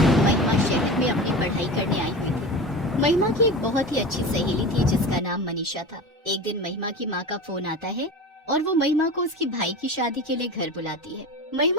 महिमा शहर में अपनी पढ़ाई करने आई हुई थी। महिमा की एक बहुत ही अच्छी सहेली थी जिसका नाम मनीषा था। एक दिन महिमा की माँ का फोन आता है और वो महिमा को उसकी भाई की शादी के लिए घर बुलाती है।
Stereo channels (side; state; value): both; normal; correlation 0.30